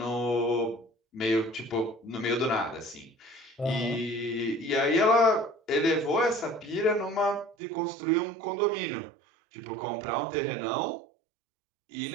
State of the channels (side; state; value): left; drops out; at 7.6 s